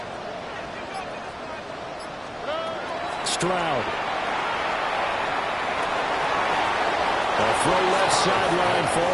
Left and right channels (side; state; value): both; identical; correlation 1.00